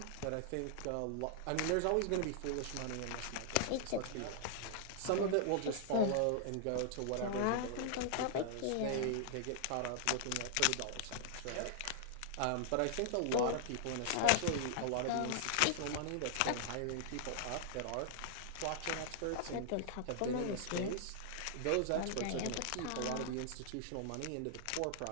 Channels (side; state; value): both; different; correlation -0.01